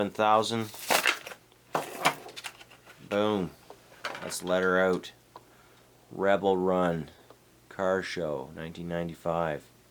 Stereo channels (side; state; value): both; identical; correlation 1.00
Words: Boom. Let's let her out. Rebel Run Car Show, 1995.